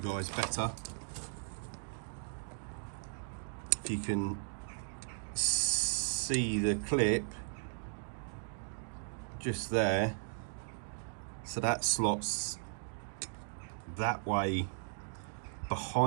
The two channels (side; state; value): left; silent; digital silence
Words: better. If you can see the clip just there, so that slots that way